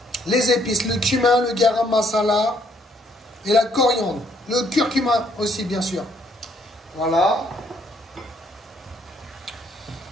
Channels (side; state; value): both; normal; correlation 0.68